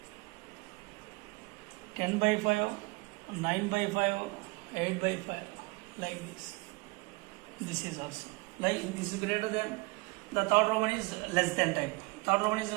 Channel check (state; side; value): quieter; left; 25.7 dB